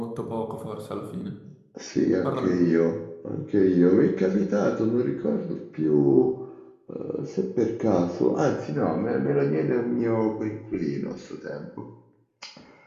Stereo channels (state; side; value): identical; both; correlation 1.00